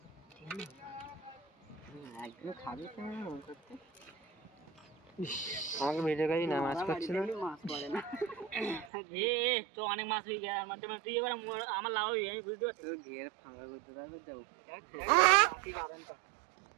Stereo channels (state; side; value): drops out; left; at 8.9 s